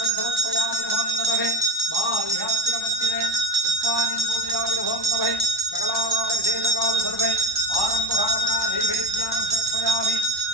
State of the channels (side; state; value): left; late; 1.1 ms